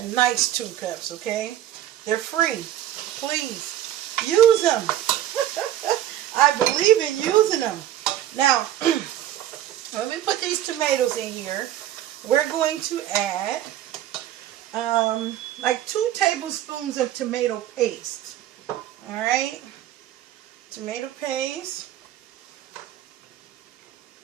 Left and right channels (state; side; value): quieter; left; 12.4 dB